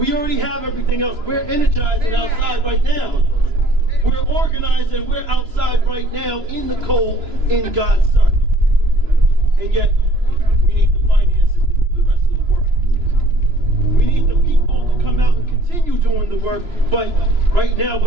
already have everything else. We're energized and outside right now. We're organized and we're outside right now in the cold in God's sun. And yet, we need the finances to do the rest of the work. We need the people to come out and continue doing the work. But right now,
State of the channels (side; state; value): left; late; 2.9 ms